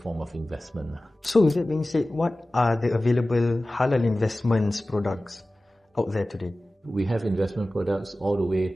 of investment. So with that being said, what are the available halal investments products out there today? We have investment products all the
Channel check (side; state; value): both; normal; correlation 0.97